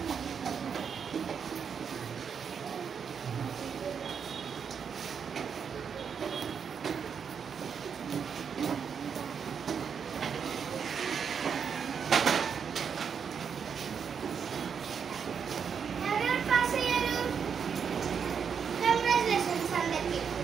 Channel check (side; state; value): left; quieter; 6.8 dB